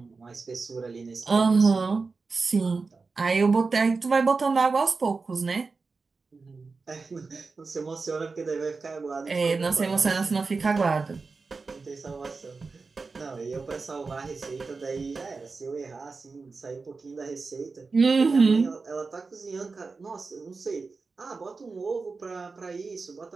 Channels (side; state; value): left; quieter; 4.3 dB